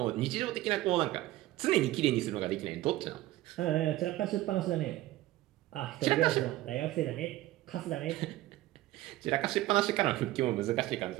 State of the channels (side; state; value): left; quieter; 16.4 dB